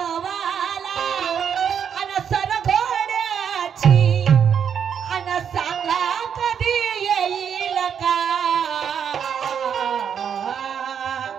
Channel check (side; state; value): left; quieter; 7.9 dB